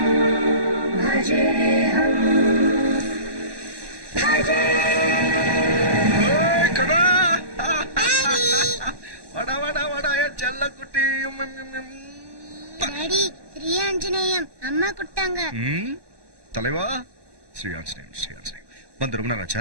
भजेऽहं भजे வடா வடா வடா என் செல்ல குட்டி. டாடி ஸ்ரீ ஆஞ்சநேயம் அம்மா குட்டாங்க. தலைவா, ஸ்ரீ ஆஞ்சநேயம் ஸ்ரீ ஆஞ்சநேயம் வந்து ரொம்ப நேரம்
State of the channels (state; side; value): late; left; 1.1 ms